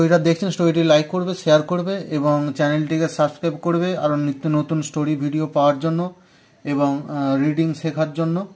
দেখছেন, স্টোরিটি লাইক করবে, শেয়ার করবে এবং চ্যানেলটিকে সাবস্ক্রাইব করবে আরও নিত্য নতুন স্টোরি ভিডিও পাওয়ার জন্য এবং রিডিং শেখার জন্য।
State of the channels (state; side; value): identical; both; correlation 1.00